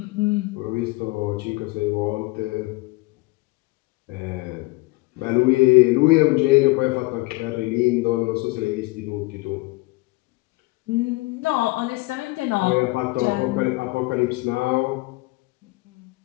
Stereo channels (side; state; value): right; quieter; 23.2 dB